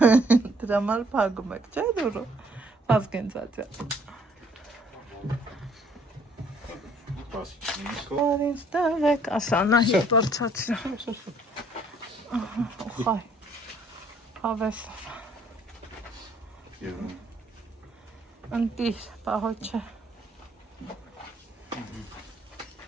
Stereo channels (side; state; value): both; normal; correlation 0.62